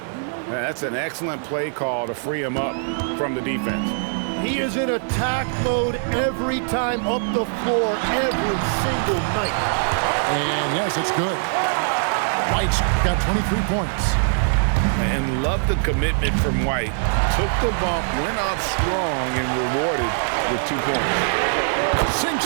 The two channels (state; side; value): silent; left; digital silence